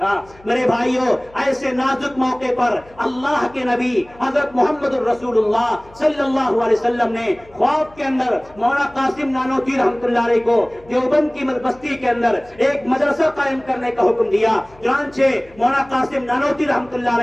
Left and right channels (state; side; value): noise; left; hum, 26 dB below the sound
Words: میرے بھائیوں، ایسے نازک موقع پر اللہ کے نبی حضرت محمد الرسول اللہ صلی اللہ علیہ وسلم نے خواب کے اندر مولانا قاسم نانوتوی رحمۃ اللہ علیہ کو دیوبند کی بستی کے اندر ایک مدرسہ قائم کرنے کا حکم دیا۔ چنانچہ مولانا قاسم نانوتوی رحمۃ اللہ